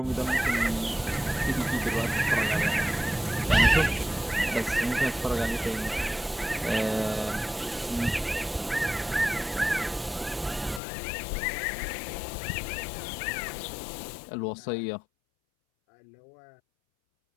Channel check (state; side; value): drops out; right; at 10.8 s